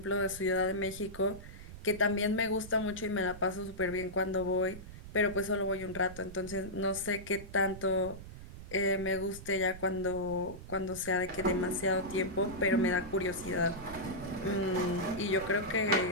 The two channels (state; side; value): noise; right; rumble, 13 dB below the sound